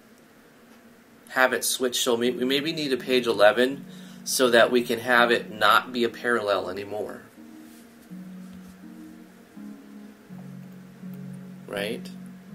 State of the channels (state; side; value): identical; both; correlation 1.00